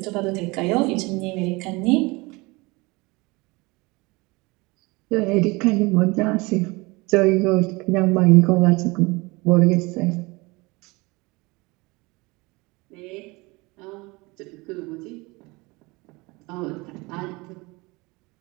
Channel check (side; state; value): left; quieter; 24.5 dB